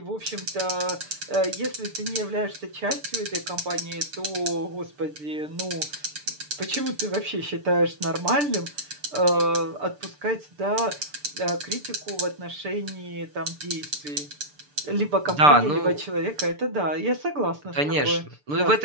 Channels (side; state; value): left; late; 6.8 ms